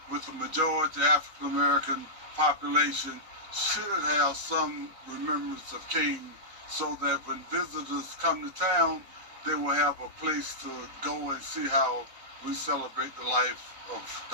with a majority African American population should have some remembrance of King, so that when visitors come to town, they will have a place to go and see how we celebrate the life of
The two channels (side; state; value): left; late; 3.9 ms